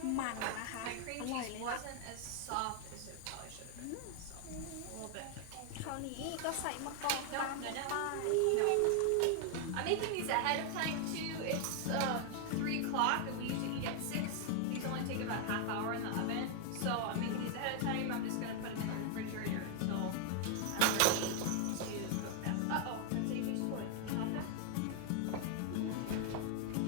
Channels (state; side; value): different; both; correlation 0.00